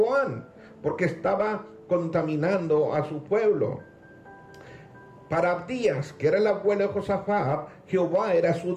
porque estaba contaminando a su pueblo. Para Abdías, que era el abuelo de Josafat, Jehová era su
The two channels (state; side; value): identical; both; correlation 1.00